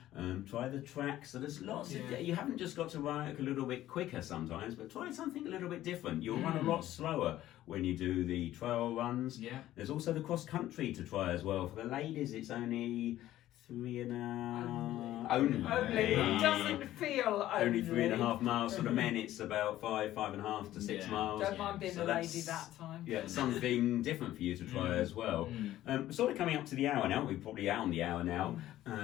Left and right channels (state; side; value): quieter; right; 13.9 dB